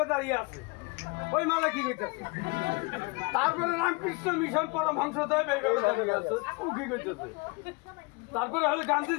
দাঁড়িয়ে আছে, ওই মালা কি কইতাছে? তারপরে রামকৃষ্ণ মিশন পরমহংসদেব এইভাবে দাঁড়িয়ে আছে, ও কি কইতাছে? তারপরে হলো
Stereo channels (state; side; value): quieter; right; 27.7 dB